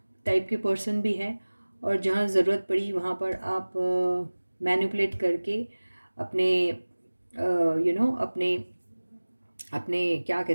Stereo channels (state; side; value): inverted; both; correlation -1.00